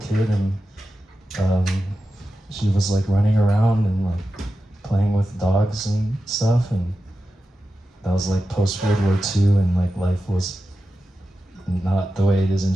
and she was like running around and like playing with dogs and stuff, and that was like post World War II, and like life was not the way it is in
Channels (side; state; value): both; normal; correlation 0.92